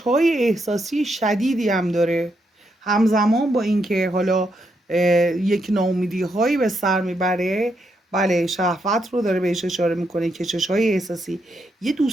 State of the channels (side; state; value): both; normal; correlation 0.80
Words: احساسی شدیدی هم داره، همزمان با اینکه حالا یک ناامیدی هایی به سر میبره. بله شهوت رو داره بهش اشاره میکنه، کشش های احساسی، یه